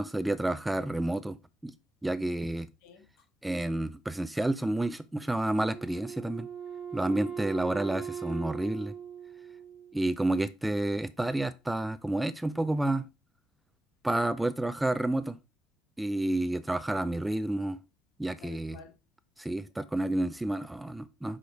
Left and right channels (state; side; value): normal; both; correlation 0.96